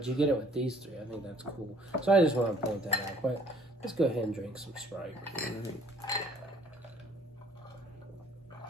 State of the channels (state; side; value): normal; both; correlation 0.58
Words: you get it with these three. I think that's cool. So I just want to point that out. But let's go ahead and drink some Sprite.